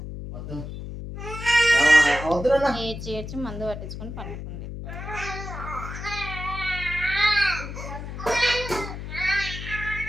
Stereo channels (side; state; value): left; noise; hum, 8 dB below the sound